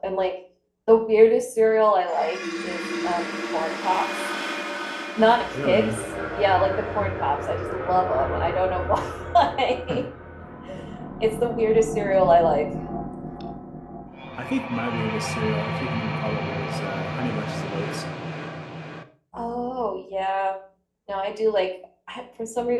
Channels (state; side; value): identical; both; correlation 1.00